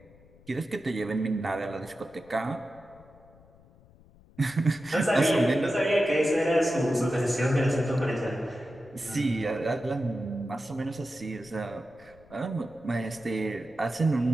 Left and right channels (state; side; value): noise; left; rumble, 26 dB below the sound